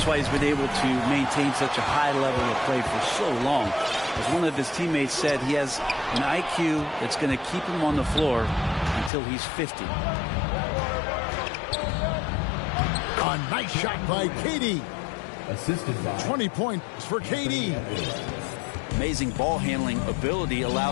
why he's been able to maintain such a high level of play for so long. As one of his teammates said, he has an IQ that's going to keep him on the floor until he's 50. A nice shot by KD. Assisted by 20 points for KD. Amazing ball handling ability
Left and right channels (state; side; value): drops out; right; at 9.1 s